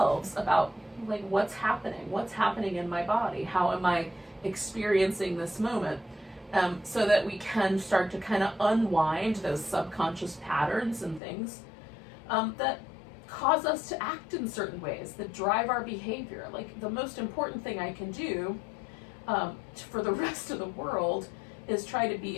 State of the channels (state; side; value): drops out; right; at 11.2 s